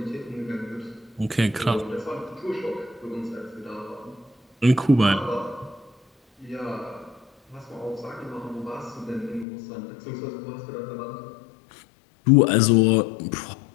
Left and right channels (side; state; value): right; drops out; at 9.5 s